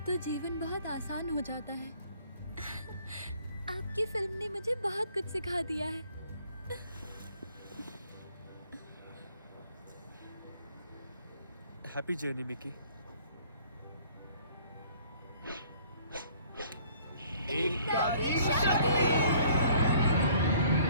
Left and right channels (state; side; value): inverted; both; correlation -0.57